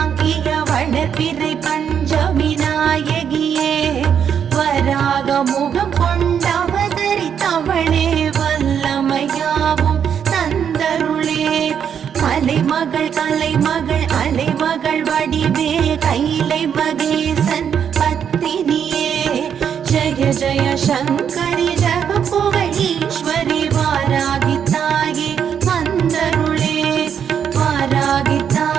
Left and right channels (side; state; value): left; quieter; 8.1 dB